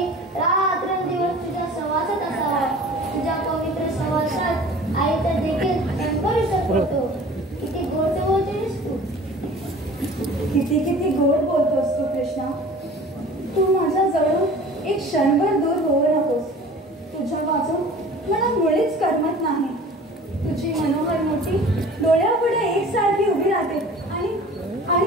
रात्रंदिवस तुझ्या सहवासात असावा. तुझ्या पवित्र सहवासात आईचा देखील करू शकतो. किती गोड बोलतेस तू. किती किती गोड बोलतोस तू कृष्णा. तू माझ्या जवळून एक क्षणभर दूर होऊ नकोस. तुझ्या वाचून मला मुळीच करमत नाही. तुझी मनोहर मोठी डोळ्यापुढे एकसारखी उभी राहते आणि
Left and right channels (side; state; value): both; normal; correlation 0.44